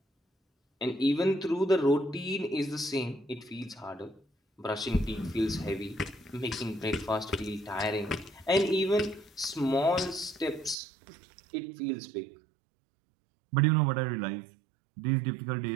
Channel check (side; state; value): left; drops out; at 10.8 s